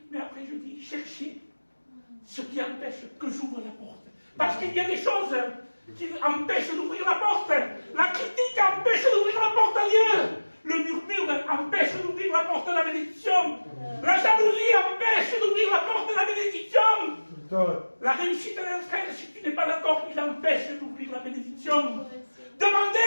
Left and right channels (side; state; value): both; inverted; correlation -1.00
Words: Mais après, je dis, cherchez ce qui empêche que j'ouvre la porte. Parce qu'il y a des choses qui empêchent d'ouvrir la porte. La critique empêche d'ouvrir la porte à Dieu. Le murmure empêche d'ouvrir la porte de la bénédiction. La jalousie empêche d'ouvrir la porte de la bénédiction. La réussite d'un frère, si tu n'es pas d'accord, il empêche d'ouvrir la bénédiction.